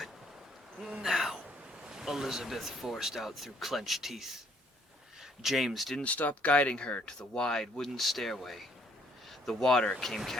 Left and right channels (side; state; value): both; normal; correlation 0.66